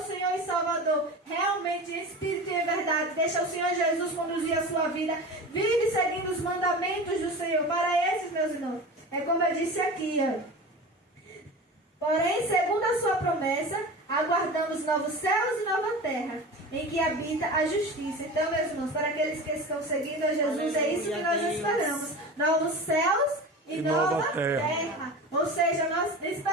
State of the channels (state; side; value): normal; both; correlation 0.32